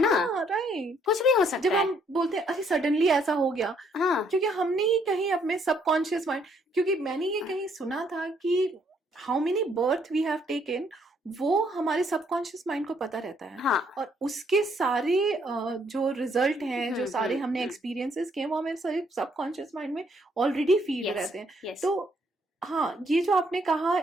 राइट, कुछ भी हो सकता है. जब हम बोलते हैं अरे सडनली ऐसा हो गया, हाँ, क्योंकि हमने ही कहीं अपने सबकॉन्शियस माइंड, क्योंकि मैंने ये कहीं सुना था कि how many birth we have taken, वो हमारे सबकॉन्शियस माइंड को पता रहता है. हाँ. और उसके सारे जो रिजल्ट हैं, जो सारे हमने एक्सपीरियंसेस किए, वो हमारे सारे सबकॉन्शियस माइंड में ऑलरेडी फीड रहते हैं. तो हाँ, ये जो आपने कहा,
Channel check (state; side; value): normal; both; correlation 0.69